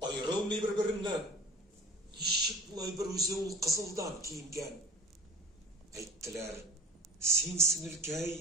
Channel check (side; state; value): both; normal; correlation 0.42